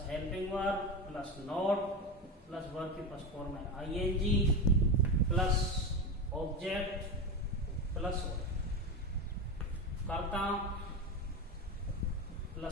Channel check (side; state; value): both; normal; correlation 0.19